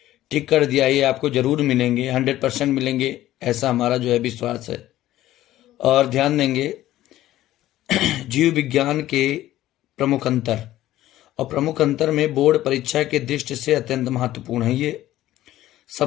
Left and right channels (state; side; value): quieter; right; 14.4 dB